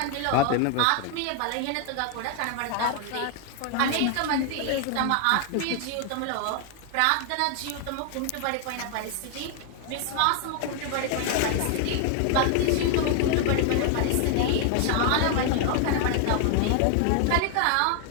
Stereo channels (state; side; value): different; both; correlation 0.00